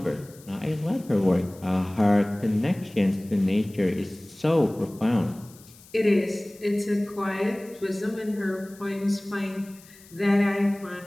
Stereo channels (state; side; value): noise; left; hiss, 23 dB below the sound